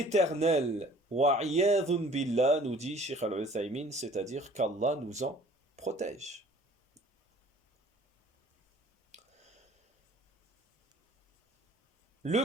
Wa'iyadhun billah, nous dit Sheikh Al-Uthaymin, c'est-à-dire qu'Allah nous en protège. Le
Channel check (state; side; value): normal; both; correlation 0.52